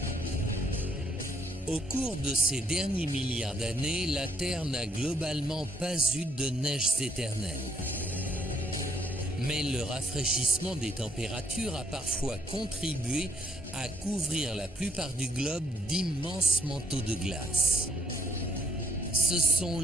Au cours de ces derniers milliards d'années, la Terre n'a globalement pas eu de neiges éternelles. Mais le rafraîchissement des températures a parfois contribué à couvrir la plupart du globe d'immenses manteaux de glace. Ce sont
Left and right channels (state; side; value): normal; both; correlation 0.68